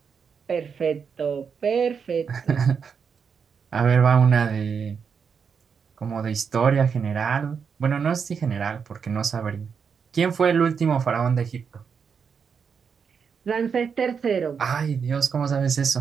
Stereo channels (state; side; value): quieter; left; 6.4 dB